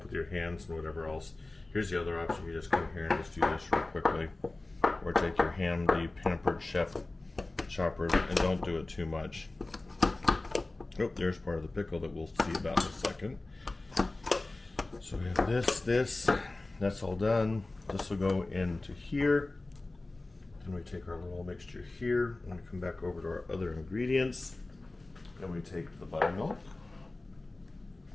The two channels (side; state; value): right; quieter; 3.0 dB